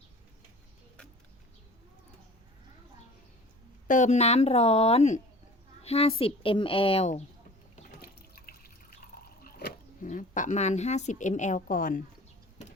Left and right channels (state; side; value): normal; both; correlation 0.43